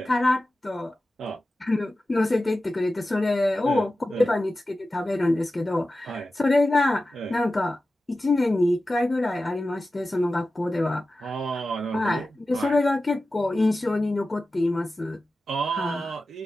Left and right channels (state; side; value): normal; both; correlation 0.94